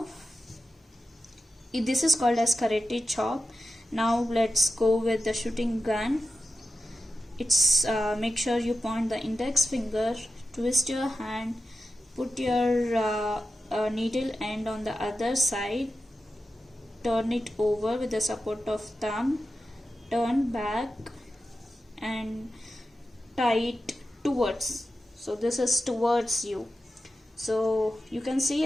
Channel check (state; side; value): normal; both; correlation 0.91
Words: this is called as karate chop. Now let's go with the shooting gun. It's make sure you point the index finger, twist your hand, put your needle end on the other side, turn it over with the support of thumb, turn back and tie it towards. So this is towards you. So you can see